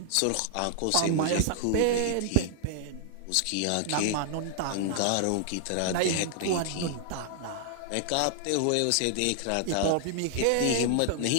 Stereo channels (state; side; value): different; both; correlation 0.00